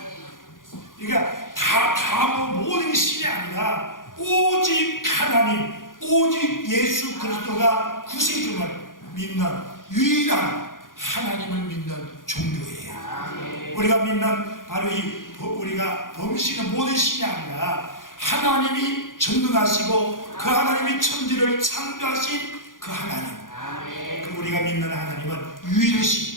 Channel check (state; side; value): late; right; 0.89 ms